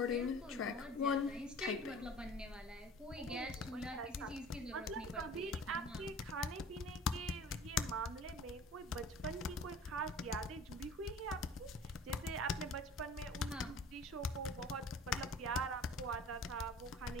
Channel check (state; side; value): normal; both; correlation 0.44